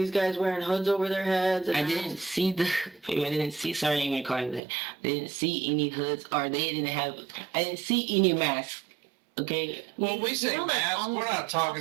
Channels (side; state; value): left; drops out; at 4.6 s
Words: guys wearing hoods over their heads. And I didn't see sorry, I didn't even call you that. I didn't see any hoods or I didn't see any masks. Okay? Well, we say know, that's mask, we're almost not